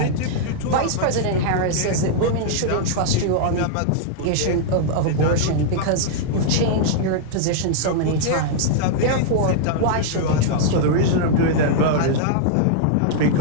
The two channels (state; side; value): different; both; correlation -0.01